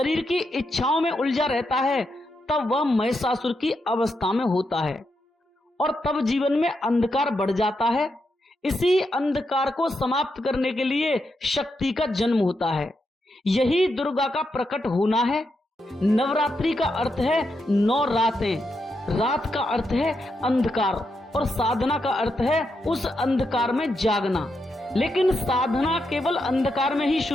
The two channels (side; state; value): both; normal; correlation 0.84